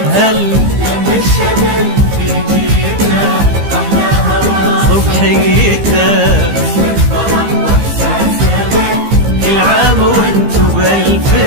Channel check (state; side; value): late; left; 15 ms